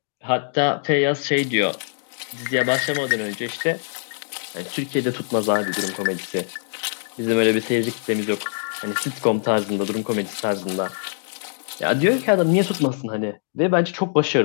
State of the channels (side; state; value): right; silent; digital silence